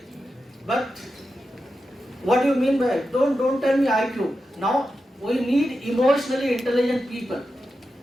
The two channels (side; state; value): both; normal; correlation 0.90